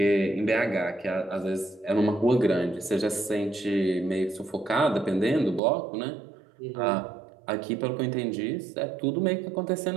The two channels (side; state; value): left; drops out; at 5.6 s